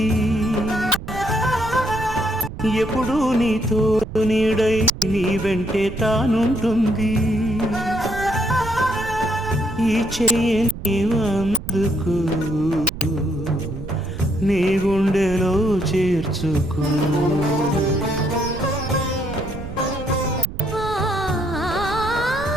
ఎప్పుడు నీతో నీడై నీ వెంటే తానుంటుంది ఈ చెయ్యి నీవందుకు నీ గుండెలో చేర్చుకో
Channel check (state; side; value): noise; right; rumble, 10 dB below the sound